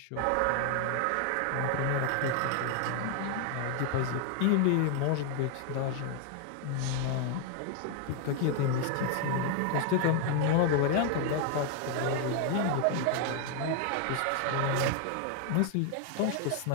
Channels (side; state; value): both; different; correlation 0.00